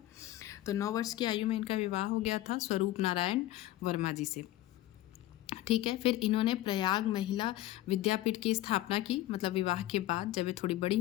तो 9 वर्ष की आयु में इनका विवाह हो गया था स्वरूप नारायण वर्मा जी से, ठीक है। फिर इन्होंने प्रयाग महिला विद्यापीठ की स्थापना की। मतलब विवाह के बाद जब ये थोड़ी बड़ी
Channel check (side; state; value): right; quieter; 15.6 dB